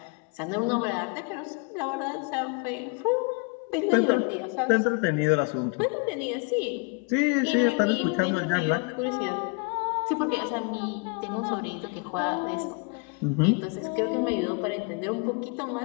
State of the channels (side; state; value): right; quieter; 32.5 dB